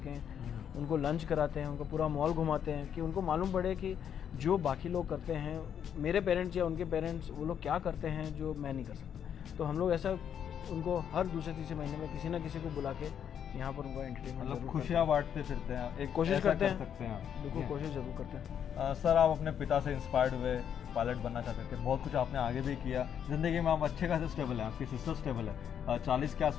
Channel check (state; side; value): quieter; right; 8.7 dB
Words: उनको लंच कराते हैं, उनको पूरा मॉल घुमाते हैं कि उनको मालूम पड़े कि जो बाकी लोग करते हैं, मेरे पेरेंट्स या उनके पेरेंट्स, वो लोग क्या करते हैं जो मैं नहीं कर सकता। तो हम लोग ऐसा उनको हर दूसरे तीसरे महीने में किसी ना किसी को बुला के यहाँ पर उनको एंटरटेनमेंट, मतलब खुशियाँ बांटते फिरते हैं, एक कोशिश करते हैं, बिल्कुल कोशिश ज़रूर करते हैं। सर आप अपने पिता से इंस्पायर्ड हुए, पायलट बनना चाहते थे, बहुत कुछ आपने आगे भी किया ज़िंदगी में, आप अच्छे खासे स्टेबल हैं, आपकी सिस्टर स्टेबल है, 40 के